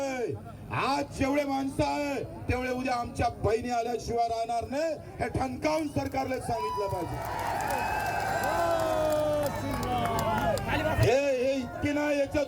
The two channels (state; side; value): identical; both; correlation 1.00